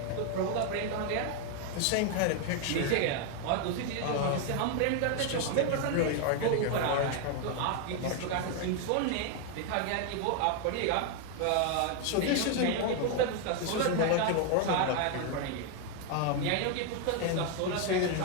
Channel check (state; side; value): different; both; correlation 0.01